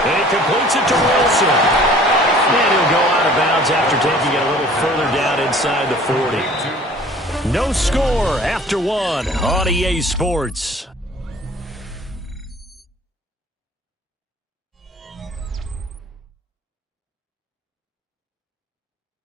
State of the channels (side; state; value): both; normal; correlation 0.50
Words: And he completes it to Wilson. And he'll go out of bounds after taking it a little further down inside the 40. No score after one on EA Sports.